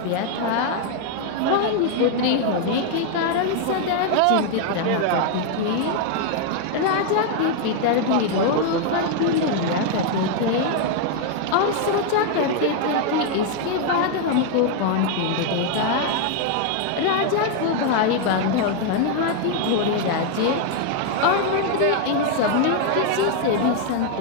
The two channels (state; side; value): different; both; correlation 0.00